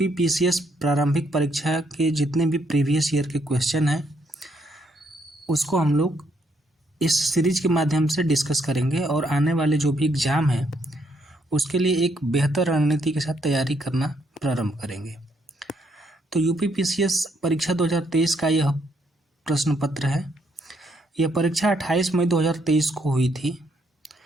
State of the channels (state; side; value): normal; both; correlation 0.73